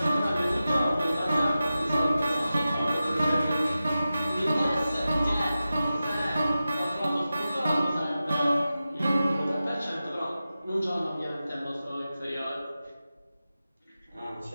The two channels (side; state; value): both; inverted; correlation -0.93